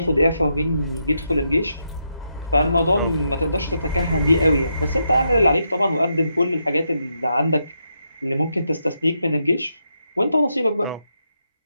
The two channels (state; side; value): inverted; both; correlation -0.81